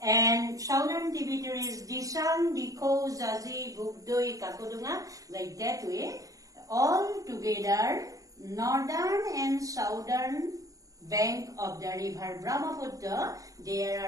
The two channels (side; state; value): left; late; 0.16 ms